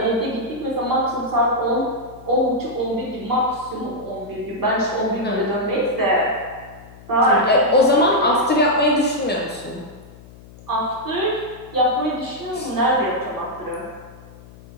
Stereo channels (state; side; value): noise; left; hum, 20 dB below the sound